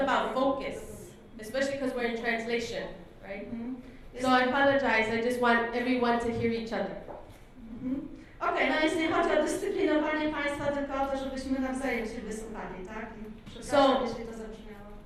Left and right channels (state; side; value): identical; both; correlation 1.00